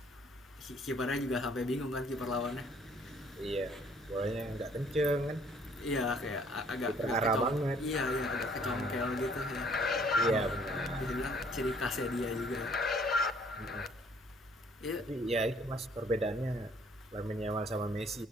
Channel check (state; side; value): normal; both; correlation 0.60